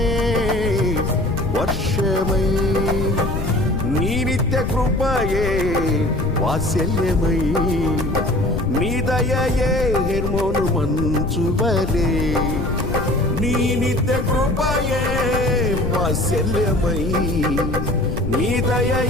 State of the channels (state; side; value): noise; left; rumble, 3 dB below the sound